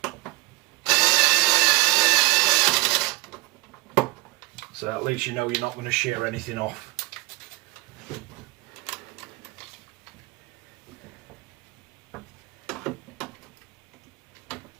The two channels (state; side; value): quieter; left; 22.3 dB